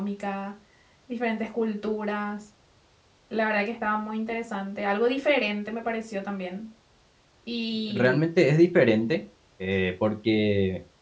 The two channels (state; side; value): identical; both; correlation 1.00